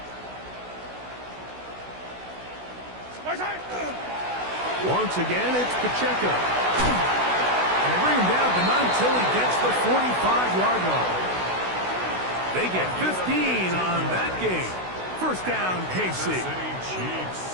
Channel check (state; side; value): late; left; 16 ms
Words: Once again, it's Pacheco. And they bring him down, but not until he gets the 45-yard line. They get 15 on that game. First down, KC.